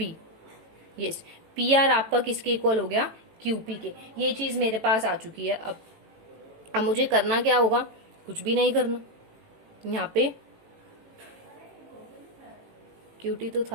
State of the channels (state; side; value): late; left; 18 ms